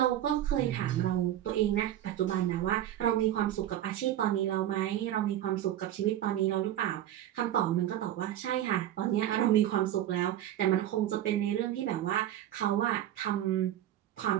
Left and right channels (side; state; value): left; quieter; 12.2 dB